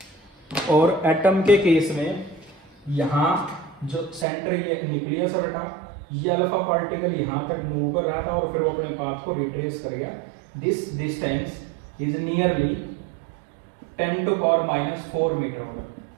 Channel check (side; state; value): left; drops out; at 4.2 s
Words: और एटम के केस में यहाँ जो सेंटर ये न्यूक्लियस है बेटा, ये अल्फा पार्टिकल यहाँ तक मूव कर रहा था और फिर वो अपने पाथ को रिट्रेस कर गया। This distance is nearly 10⁻⁴ metre होगा,